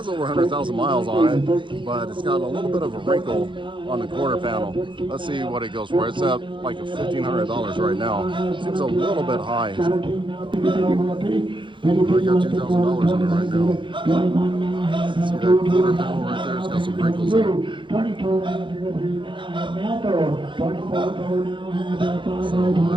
over 100,000 miles on it, but it's got a little bit of a wrinkle on the quarter panel. Let's see what it goes for. It's at like $1,500 right now. Seems a little bit high. I got $2,000 on it right now. See that quarter panel right there? It's got some wrinkles in it. So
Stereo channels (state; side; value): late; left; 0.24 ms